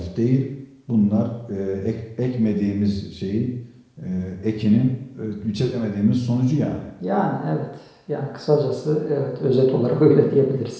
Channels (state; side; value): identical; both; correlation 1.00